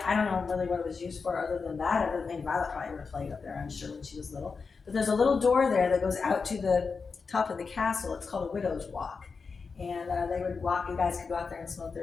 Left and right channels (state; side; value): quieter; right; 5.0 dB